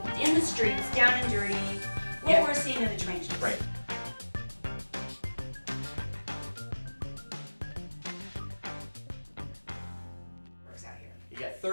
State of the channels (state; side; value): inverted; both; correlation -1.00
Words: in the streets, down and dirty, what we're seeing in the trenches. Right. Works out here. You got